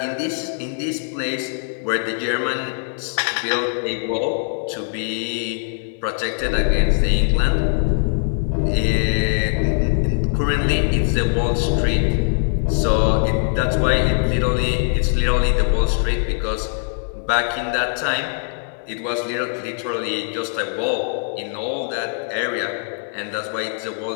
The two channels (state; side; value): silent; right; digital silence